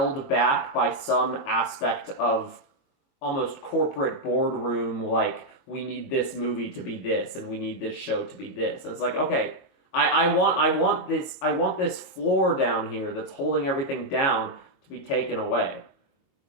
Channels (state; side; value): late; right; 22 ms